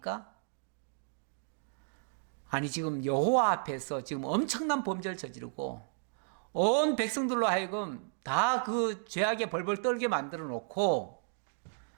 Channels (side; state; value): left; silent; digital silence